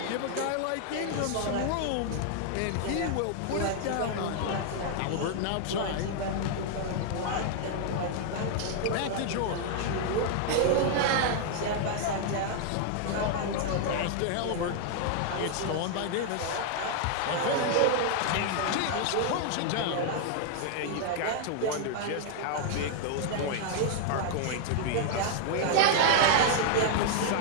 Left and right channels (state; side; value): different; both; correlation 0.00